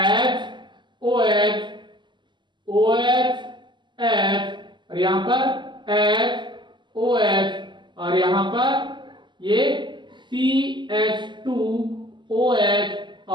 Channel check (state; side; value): late; left; 0.22 ms